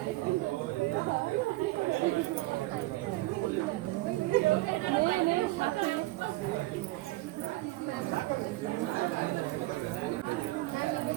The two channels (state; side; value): quieter; left; 19.3 dB